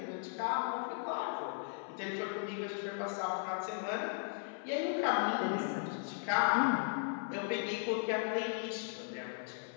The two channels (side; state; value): right; silent; 53 dB below the other